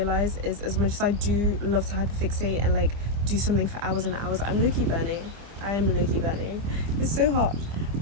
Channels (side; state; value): left; late; 25 ms